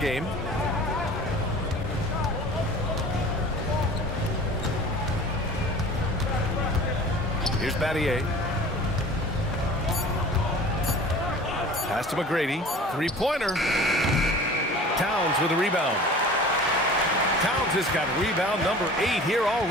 Here's Battier. Pass to McGrady. 3-pointer. Towns with a rebound. Towns has got rebound number 8 here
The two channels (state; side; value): normal; both; correlation 0.42